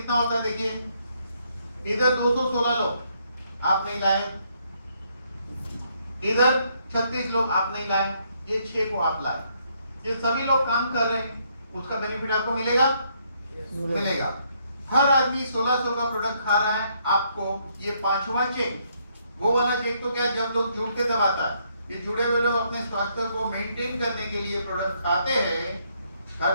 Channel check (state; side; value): inverted; both; correlation -0.72